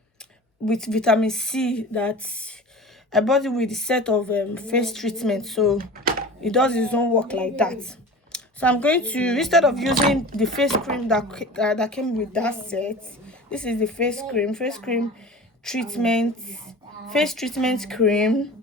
with vitamin C that I bought it with the set of face treatment, so it does its own work like that. So I'm going to, instead of using the face cream that came with that set, this is the face treatment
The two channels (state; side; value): normal; both; correlation 0.37